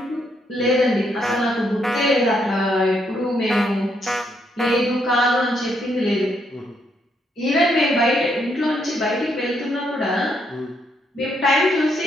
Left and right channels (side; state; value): both; normal; correlation 0.75